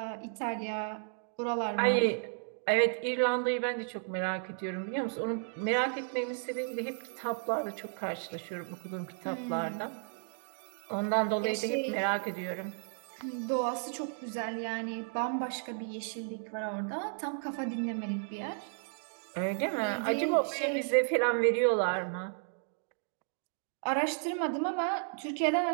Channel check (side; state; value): left; silent; digital silence